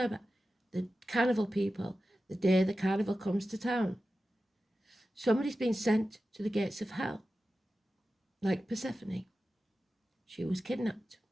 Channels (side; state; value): both; normal; correlation 0.93